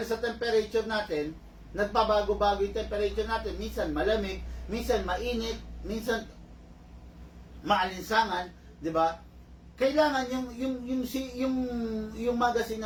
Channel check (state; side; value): identical; both; correlation 1.00